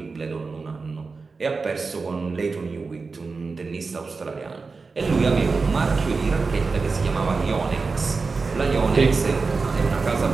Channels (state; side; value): quieter; left; 4.3 dB